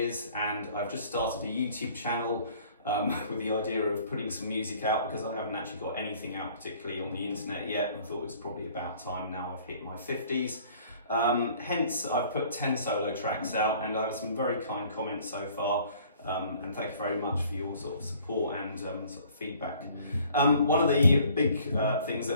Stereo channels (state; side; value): inverted; both; correlation -0.55